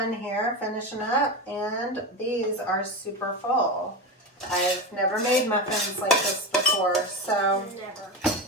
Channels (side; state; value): both; normal; correlation 0.20